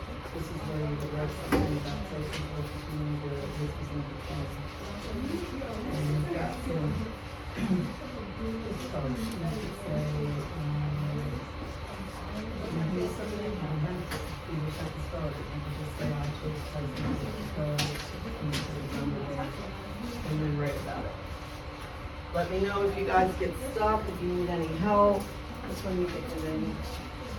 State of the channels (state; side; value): identical; both; correlation 1.00